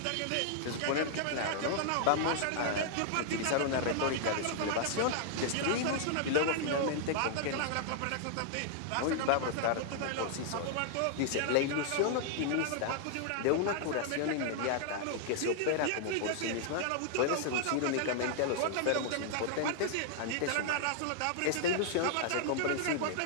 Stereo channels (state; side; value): different; both; correlation -0.01